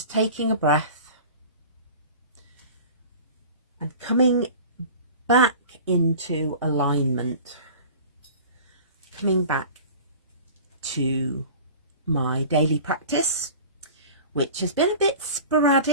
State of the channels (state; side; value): inverted; both; correlation -0.40